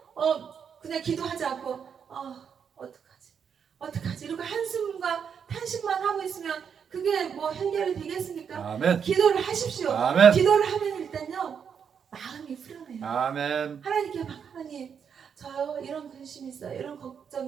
그냥 기도하지 않고 어떡하지 이렇게 한숨과 탄식만 하고 있으면 그게 뭐 해결이 되겠습니까? 아멘. 기도를 하십시오. 아멘. 기도를 하면 일단요 마음이 후련해요. 아멘. 하나님께 막 하나님 저요 이런 근심이 있어요, 이런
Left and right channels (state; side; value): quieter; left; 7.2 dB